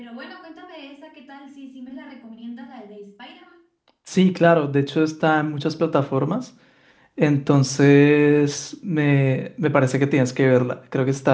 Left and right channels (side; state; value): both; identical; correlation 1.00